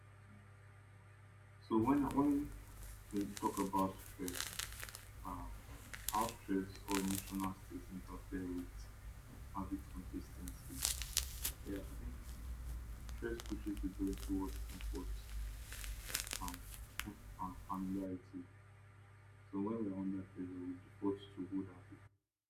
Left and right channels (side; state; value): both; identical; correlation 1.00